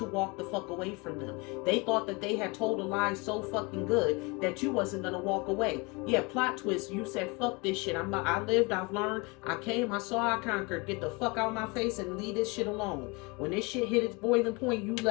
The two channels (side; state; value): right; quieter; 27.8 dB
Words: walk the fuck away from them. They thought that they had told a lie so fucking good that you wasn't gonna walk away. Yeah, plot twist. You said, fuck this shit. I lived, I've learned, I came, I saw, I conquered. Get the fuck out of my face and leave this shit alone. When this shit hit its boiling point, you